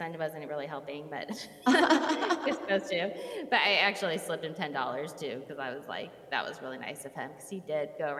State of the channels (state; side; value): identical; both; correlation 1.00